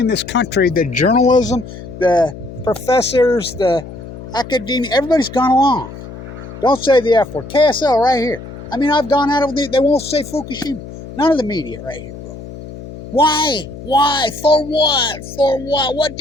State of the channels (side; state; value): left; noise; hum, 13 dB below the sound